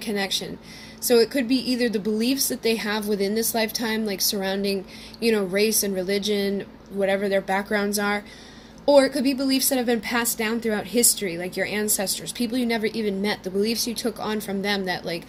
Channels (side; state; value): both; identical; correlation 1.00